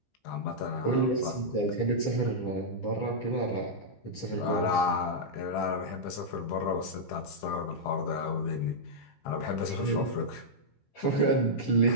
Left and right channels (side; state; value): right; late; 15 ms